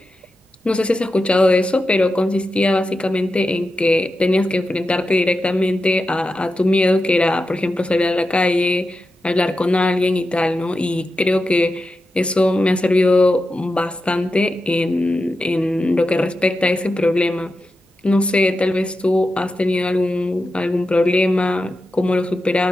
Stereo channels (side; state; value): both; normal; correlation 0.90